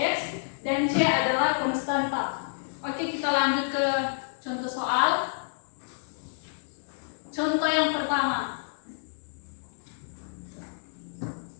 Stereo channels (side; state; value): right; silent; digital silence